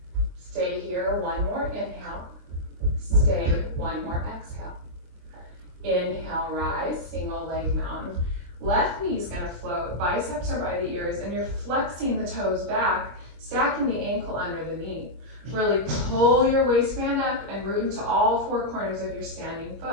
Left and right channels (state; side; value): late; left; 23 ms